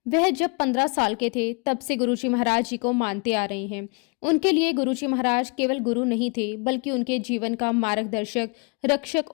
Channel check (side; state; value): right; quieter; 34.3 dB